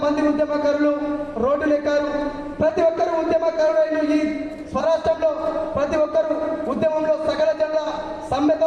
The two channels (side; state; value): both; identical; correlation 1.00